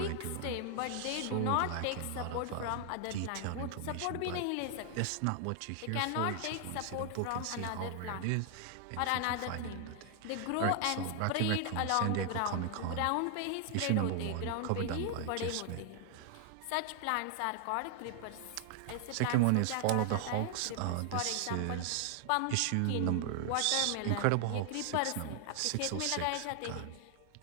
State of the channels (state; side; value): different; both; correlation 0.00